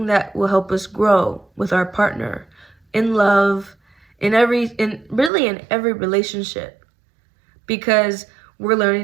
that will help us grow with our partner, in love, really in every relationship. Because we're learning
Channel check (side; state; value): left; drops out; at 5.3 s